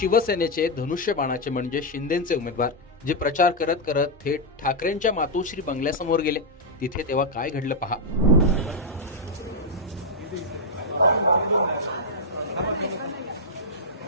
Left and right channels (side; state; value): both; normal; correlation -0.03